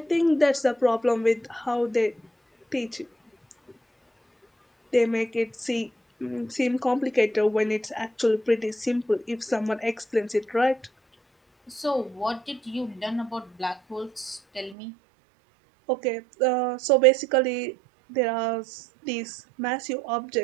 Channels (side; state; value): left; drops out; at 14.8 s